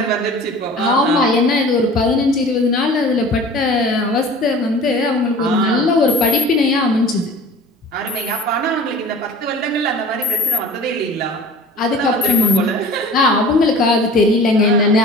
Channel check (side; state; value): both; normal; correlation 0.43